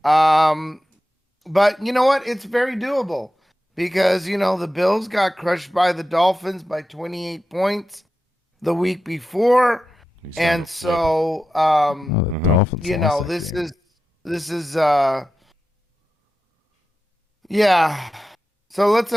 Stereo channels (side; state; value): both; normal; correlation 0.92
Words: but you know what? It's very doable because, the Bills got crushed by the Dolphins by 28 points the week before. And so, the Dolphins lost that game. this is, yeah. So let's,